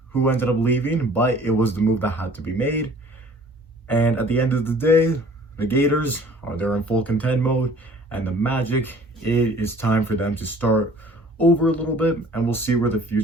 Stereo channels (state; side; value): normal; both; correlation 0.51